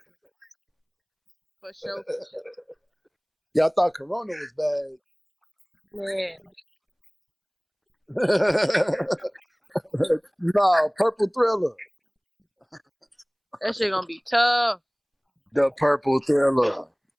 For sure, for sure. y'all thought Corona was bad. Man, No, Purple Thriller. that shit gonna be tough. The Purple Thriller.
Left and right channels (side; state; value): both; identical; correlation 1.00